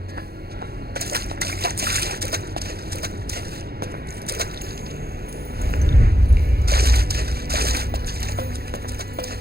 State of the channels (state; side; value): late; left; 0.46 ms